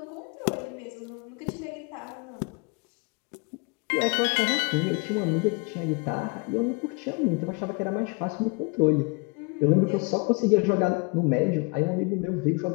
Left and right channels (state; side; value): quieter; right; 31.5 dB